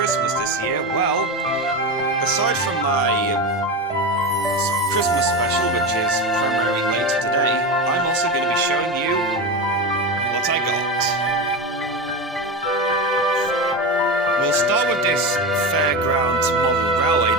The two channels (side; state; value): both; normal; correlation 0.21